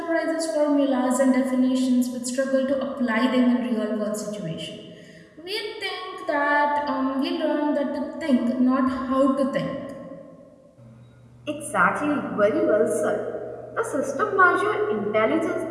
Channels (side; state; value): both; identical; correlation 1.00